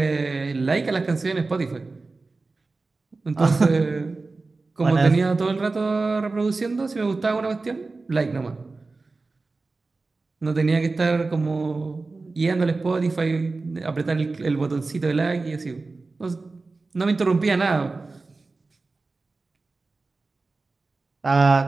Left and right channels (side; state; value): left; quieter; 3.7 dB